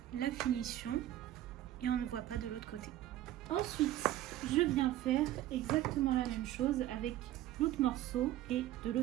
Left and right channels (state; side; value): quieter; left; 13.7 dB